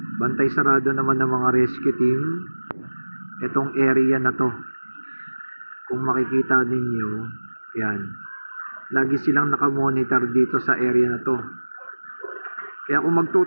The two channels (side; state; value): both; inverted; correlation -1.00